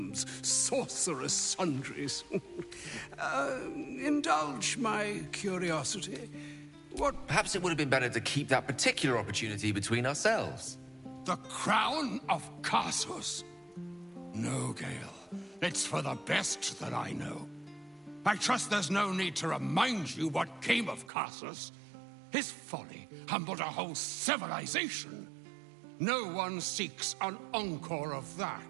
sorcerous sundries. Indulge my curiosity. What... Perhaps it would have been better to keep that particular opportunity between ourselves. The crown of Casus. No, Gale. It's for the best that I know. I trust there's no need to remind you what came of Casus. His folly humbled a whole civilization. No one seeks an encore of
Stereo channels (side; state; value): left; drops out; at 21.1 s